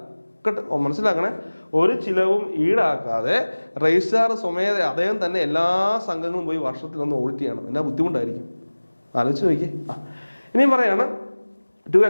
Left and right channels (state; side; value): inverted; both; correlation -1.00